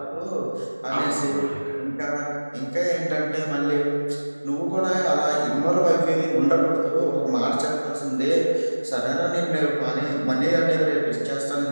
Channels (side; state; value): both; inverted; correlation -1.00